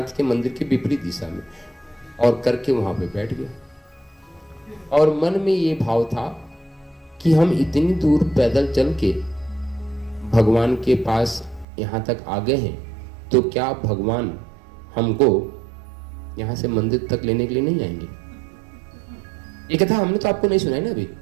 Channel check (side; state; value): left; drops out; at 11.7 s